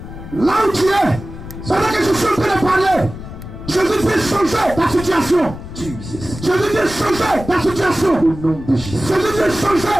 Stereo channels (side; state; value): left; noise; rumble, 12 dB below the sound